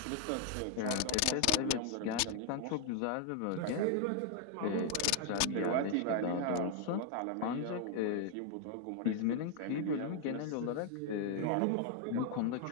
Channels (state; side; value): different; both; correlation 0.00